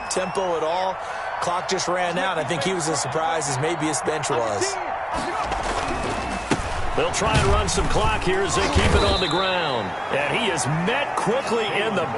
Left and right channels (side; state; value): both; identical; correlation 1.00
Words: at all. Clock just ran out. I think he was as surprised as maybe his bench was. They'll try and run some clock here as they keep it on the ground. And he is met quickly in the